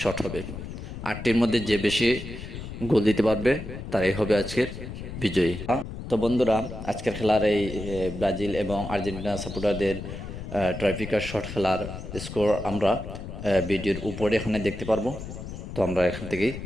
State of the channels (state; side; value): noise; left; rumble, 9 dB below the sound